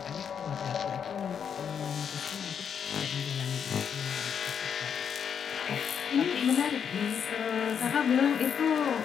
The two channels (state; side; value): quieter; right; 7.5 dB